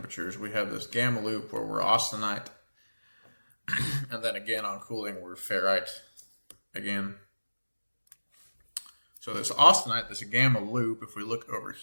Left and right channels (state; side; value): inverted; both; correlation -1.00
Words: We have this gamma loop where we're austenite, and then again on cooling we're ferrite again. So this austenite, this gamma loop, if we look over